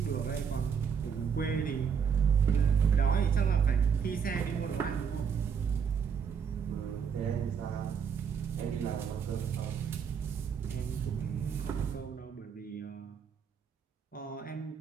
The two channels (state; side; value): quieter; left; 6.9 dB